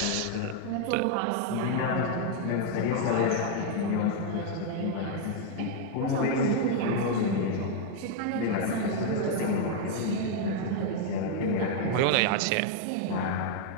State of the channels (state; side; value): different; both; correlation 0.00